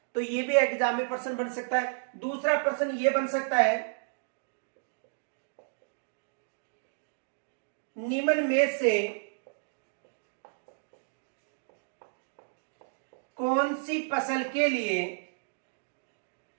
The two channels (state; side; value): silent; left; digital silence